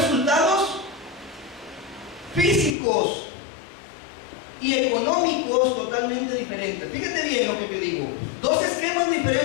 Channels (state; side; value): drops out; right; at 2.8 s